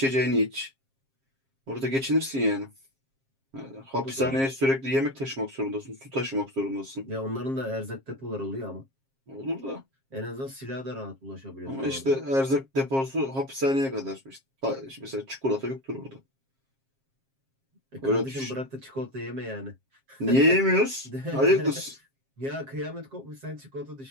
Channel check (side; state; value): left; late; 7.5 ms